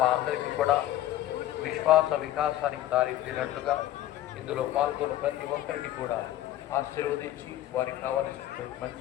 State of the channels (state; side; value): quieter; right; 13.7 dB